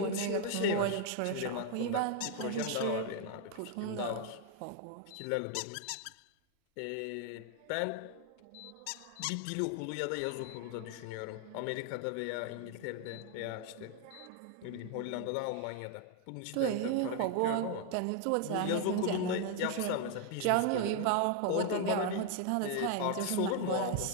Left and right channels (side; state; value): both; different; correlation 0.00